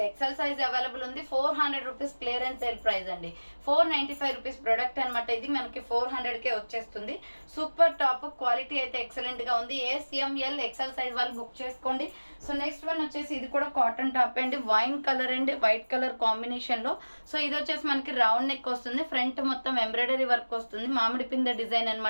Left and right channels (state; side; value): inverted; both; correlation -1.00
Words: XL size available ఉంది. 400 రూపీస్ క్లియరెన్స్ సేల్ ప్రైస్ అండి. 495 రూపీస్ ప్రొడక్ట్ అనమాట. ఇది మనకి 400 కే వచ్చేస్తుంది. Super top. క్వాలిటీ అయితే ఎక్సలెంట్ గా ఉంది. ఎంఎల్ ఎక్సెల్ సైజ్ వాళ్ళు బుక్ చేసుకోండి. సో నెక్స్ట్ వన్ వచ్చేసి ఇది కూడా కాటన్ టాప్ అండి. Wine colour and white colour combination లో. సో ఇది వచ్చేసి మనకి రౌండ్ నెక్ వస్తుంది. ఫ్రంట్ మొత్తం ఎంబ్రాయిడరీ వర్క్ వస్తుంది. మామిడి పింద డిజైన్